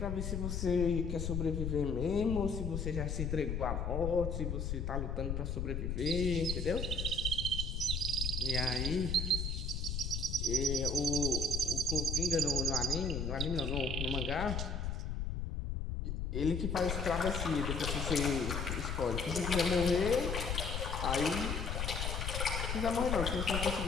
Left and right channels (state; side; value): noise; left; rumble, 2 dB below the sound